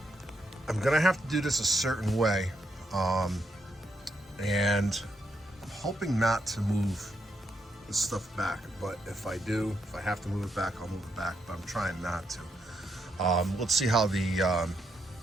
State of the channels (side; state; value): both; normal; correlation 0.79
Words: I'm gonna have to do this a certain way, and I'm hoping not to move this stuff back, but if I have to move it back, I'll move it back, but I'm trying not to. Let's see how the